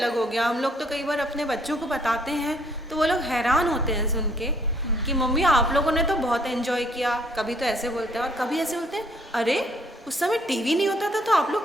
हो गया। हम लोग तो कई बार अपने बच्चों को बताते हैं तो वो लोग हैरान होते हैं सुन के कि मम्मी आप लोगों ने तो बहुत एंजॉय किया। कभी तो ऐसे बोलते हैं और कभी ऐसे बोलते हैं, अरे उस समय टीवी नहीं होता था तो आप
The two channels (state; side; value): normal; both; correlation 0.64